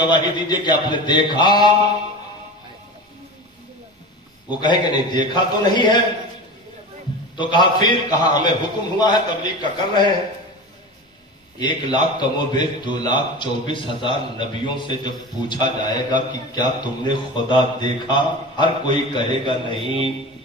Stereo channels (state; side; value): normal; both; correlation 0.30